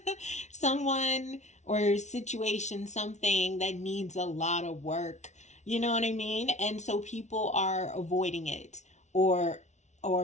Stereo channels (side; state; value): right; late; 0.33 ms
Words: someone or situation, something that needs a lot of work. You know what I mean? And so people are avoiding it or